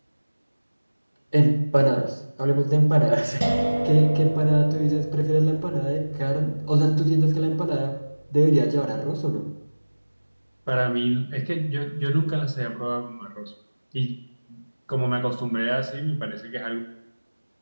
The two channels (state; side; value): inverted; both; correlation -1.00